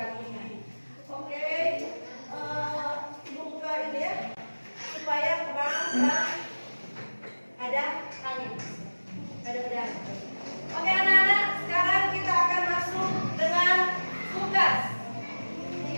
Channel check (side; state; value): both; inverted; correlation -1.00